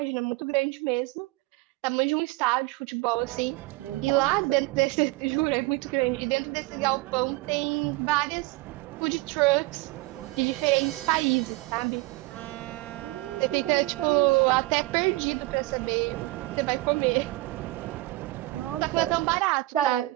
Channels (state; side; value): quieter; left; 20.6 dB